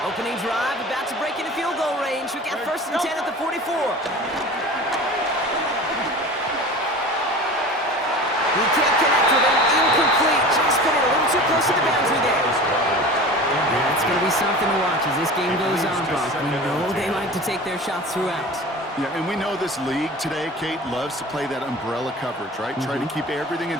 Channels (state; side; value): normal; both; correlation 0.36